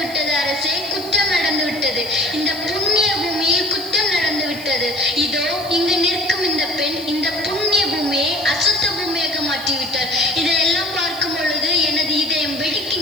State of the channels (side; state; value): right; noise; hiss, 18 dB below the sound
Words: விட்டது அரசே, குற்றம் நடந்து விட்டது. இந்த புண்ணிய பூமியில் குற்றம் நடந்து விட்டது. இதோ இங்கு நிற்கும் இந்த பெண் இந்த புண்ணிய பூமியை அசுத்த பூமியாக மாற்றிவிட்டார். இதையெல்லாம் பார்க்கும் பொழுது எனது இதயம்